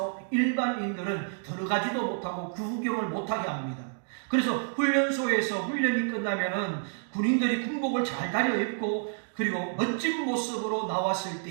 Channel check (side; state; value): left; silent; digital silence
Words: 일반인들은 들어가지도 못하고 구경을 못하게 합니다. 그래서 훈련소에서 훈련이 끝나면은 군인들이 군복을 잘 다려입고 그리고 멋진 모습으로 나왔을